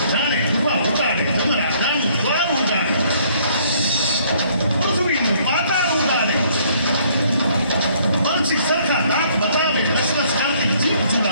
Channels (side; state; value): both; inverted; correlation -0.62